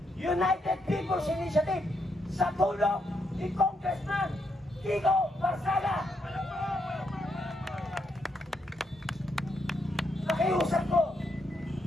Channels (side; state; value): both; normal; correlation 0.78